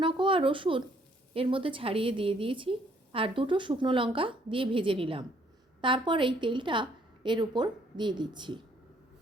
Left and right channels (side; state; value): both; normal; correlation 0.65